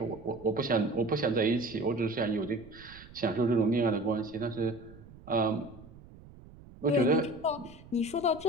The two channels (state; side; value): noise; right; rumble, 20 dB below the sound